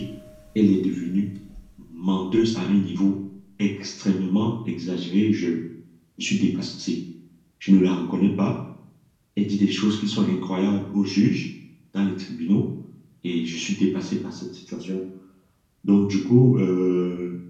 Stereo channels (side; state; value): both; identical; correlation 1.00